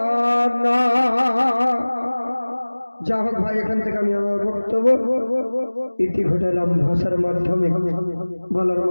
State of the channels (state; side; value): inverted; both; correlation -1.00